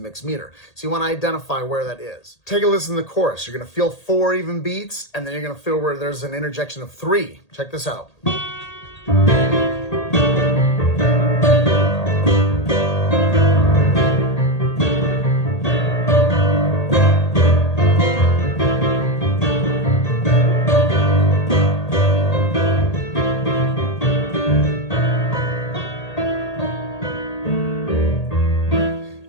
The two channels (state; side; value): late; right; 1.8 ms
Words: mixed meter. So you want to identify where that is. Take a listen to the chorus. You're going to feel 4 even beats, and then you're going to feel where there's an interjection of 3. Check this out.